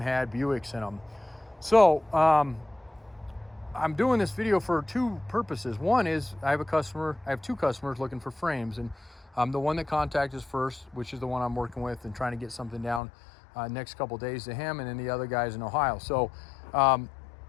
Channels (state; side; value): drops out; right; at 13.0 s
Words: had Buicks in them. So I'm doing this video for 2 purposes. One is I have 2 customers looking for frames, and the one that contacted us first, which is the one I'm working with and trying to get something down next couple days to him, and then the other guy's in Ohio. So the